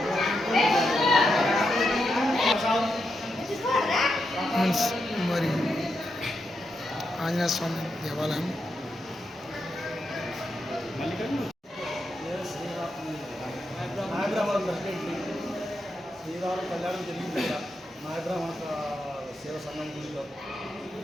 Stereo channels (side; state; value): both; normal; correlation 0.84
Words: మరి ఆంజనేయ స్వామి దేవాలయం శ్రీరామ కళ్యాణం జరిగింది. నాయబ్రాహ్మణ సేవ సంఘం గుడిలో